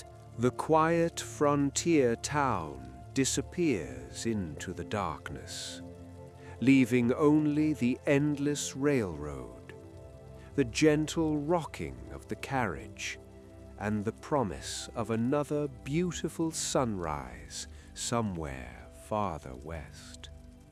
The quiet frontier town disappears into the darkness, leaving only the endless railroad, the gentle rocking of the carriage, and the promise of another beautiful sunrise somewhere farther west.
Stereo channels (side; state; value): both; identical; correlation 1.00